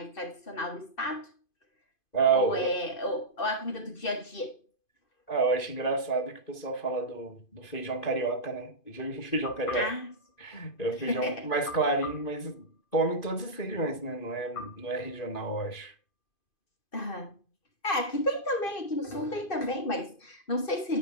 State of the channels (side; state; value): right; late; 2.5 ms